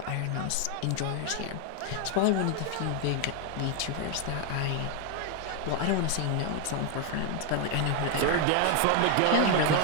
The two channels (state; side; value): different; both; correlation 0.01